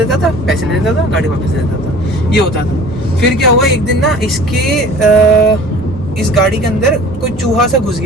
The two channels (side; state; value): both; normal; correlation 0.45